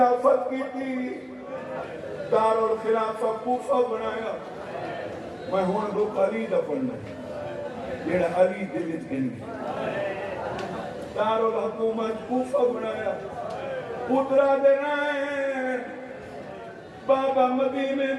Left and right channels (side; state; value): both; identical; correlation 1.00